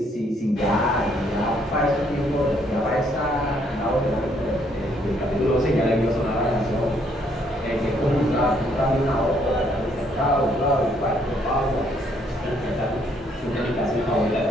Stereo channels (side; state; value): both; normal; correlation 0.68